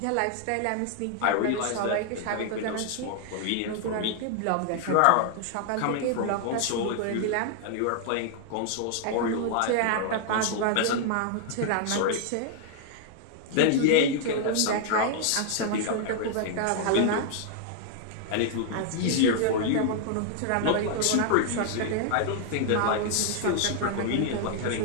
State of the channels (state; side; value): different; both; correlation 0.00